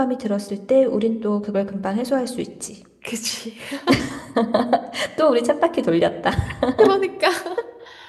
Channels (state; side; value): identical; both; correlation 1.00